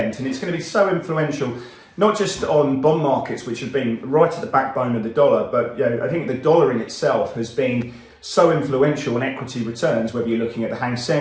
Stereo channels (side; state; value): both; identical; correlation 1.00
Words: and it's going to be so influential, not just on bond markets, which have been right at the backbone of the dollar, but I think the dollar in itself has been so influential on equity returns, whether you're looking at the Hang